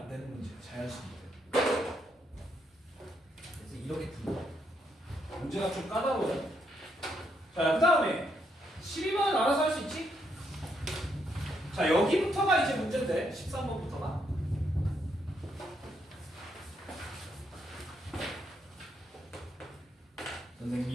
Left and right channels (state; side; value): normal; both; correlation 0.77